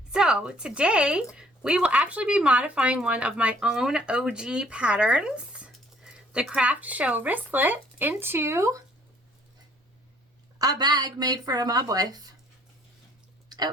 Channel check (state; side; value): normal; both; correlation 0.60